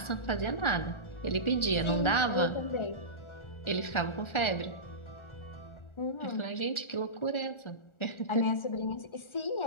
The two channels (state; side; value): late; right; 1.4 ms